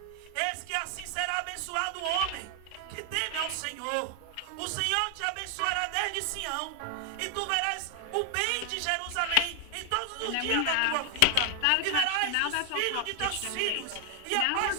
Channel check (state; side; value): different; both; correlation 0.00